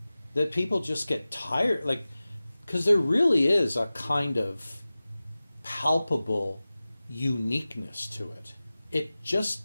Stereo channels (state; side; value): inverted; both; correlation -0.97